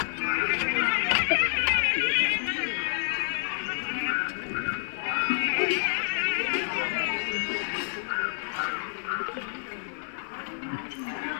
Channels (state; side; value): silent; right; 59 dB below the other